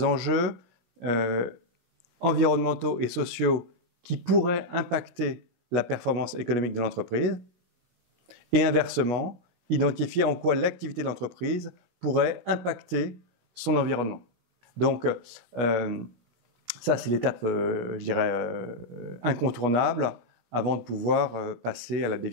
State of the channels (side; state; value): left; late; 17 ms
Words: enjeux environnementaux et sociaux qui pourraient impacter la performance économique de l'entreprise, et inversement, identifier en quoi l'activité de l'entreprise pourrait impacter son environnement. Donc, ça, c'est l'étape, je dirais, incontournable avant de pouvoir passer à la